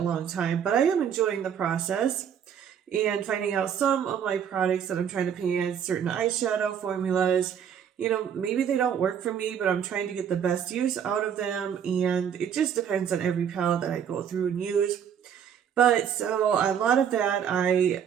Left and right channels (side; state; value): left; quieter; 8.3 dB